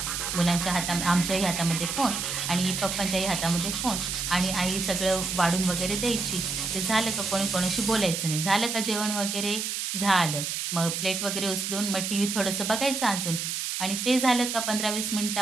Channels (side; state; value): right; noise; hiss, 3 dB below the sound